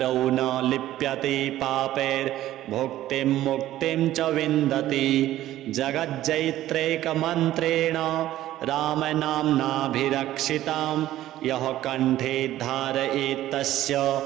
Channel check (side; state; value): left; quieter; 14.0 dB